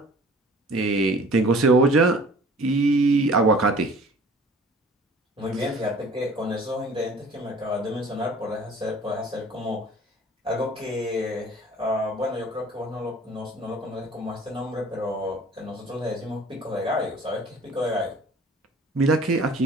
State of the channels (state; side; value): normal; both; correlation 0.48